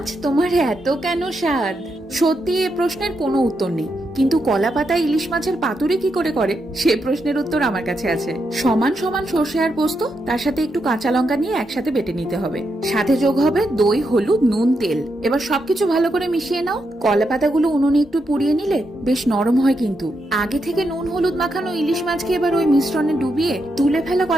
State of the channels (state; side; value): normal; both; correlation 0.83